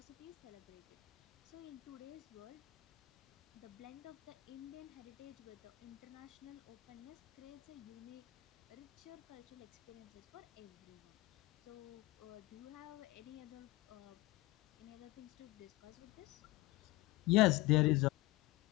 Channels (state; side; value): quieter; right; 19.9 dB